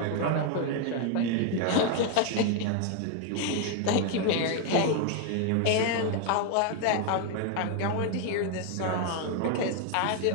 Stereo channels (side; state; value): both; different; correlation 0.01